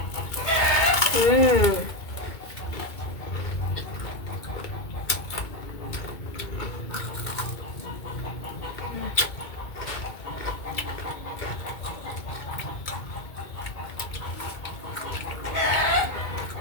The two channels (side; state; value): right; late; 2.3 ms